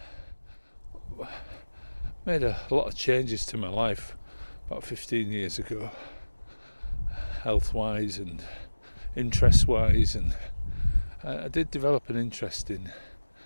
made a lot of changes to my life about 15 years ago, health-wise and interest-wise, and I did develop an interest in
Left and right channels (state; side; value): inverted; both; correlation -1.00